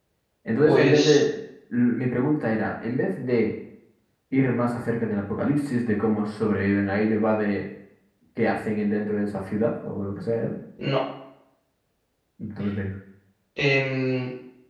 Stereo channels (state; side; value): identical; both; correlation 1.00